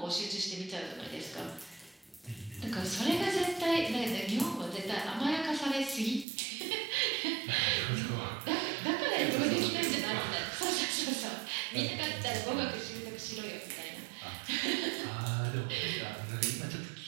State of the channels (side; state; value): left; drops out; at 6.2 s